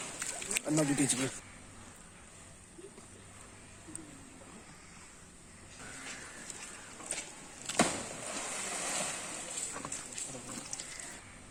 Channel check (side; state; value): both; identical; correlation 1.00